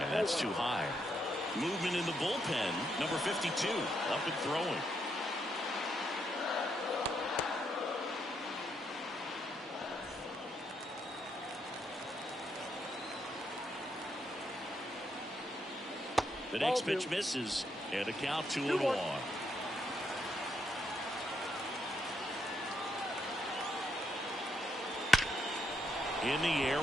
that's too high. Movement in the bullpen, number 52, up and throwing. The next pitch misses, and a count 2-1. In the air,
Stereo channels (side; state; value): both; normal; correlation 0.77